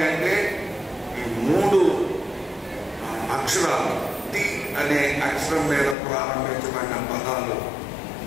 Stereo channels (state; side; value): drops out; right; at 6.0 s